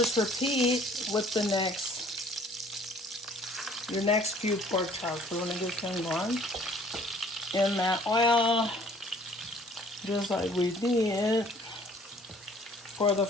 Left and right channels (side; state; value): both; normal; correlation 0.56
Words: repeat with the your next few pork chops. We're going to get them going in that oil, just like we did for the